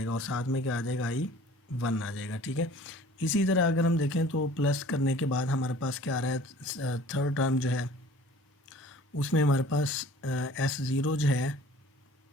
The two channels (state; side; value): normal; both; correlation 0.49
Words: और साथ में क्या आ जाएगा, I1 आ जाएगा। ठीक है, इसी तरह अगर हम देखें तो प्लस करने के बाद हमारे पास क्या आ रहा है, थर्ड टर्म जो है उसमें हमारे पास S0 जो है,